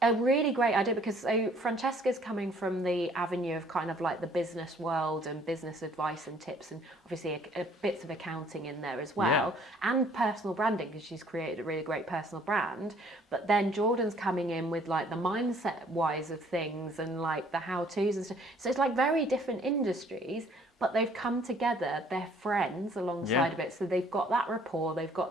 a really great idea, because so Francesca's coming from the avenue of kind of like the business world and business advice and tips, and obviously a bits of accounting in there as well, and personal branding, because she's created a really great personal brand. But then Jordan's coming in with like the mindset wise of things and like the how-tos and stuff. So it's like very different industries, but they've come together, they're friends alongside of it, so they've got that rapport, they've got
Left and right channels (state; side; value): normal; both; correlation 0.59